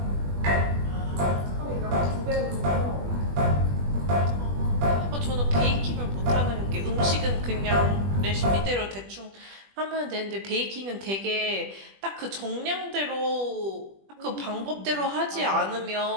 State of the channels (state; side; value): late; left; 20 ms